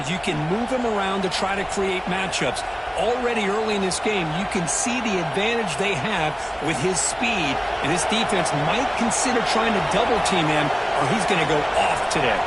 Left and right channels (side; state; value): both; identical; correlation 1.00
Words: can move him around to try to create matchups. Already early in this game, you can see the advantage they have with his speed, and this defense might consider trying to double-team him, or he's going to go off today.